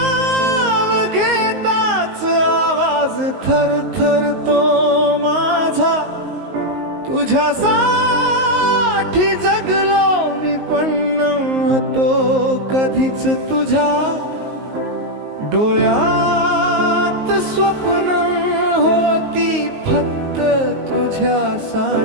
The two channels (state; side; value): late; left; 19 ms